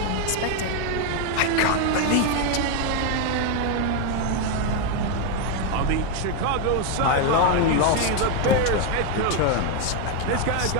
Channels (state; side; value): different; both; correlation 0.01